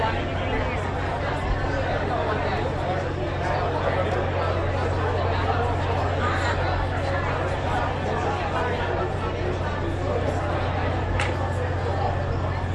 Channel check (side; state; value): both; identical; correlation 1.00